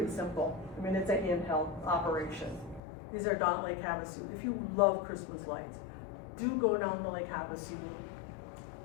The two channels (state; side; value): drops out; right; at 2.8 s